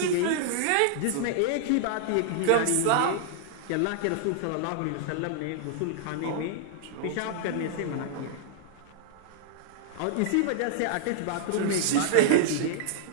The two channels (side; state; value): both; different; correlation -0.01